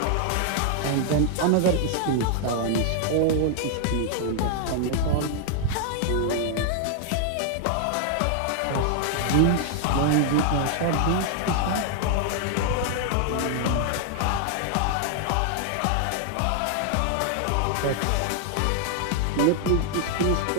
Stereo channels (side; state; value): both; different; correlation 0.00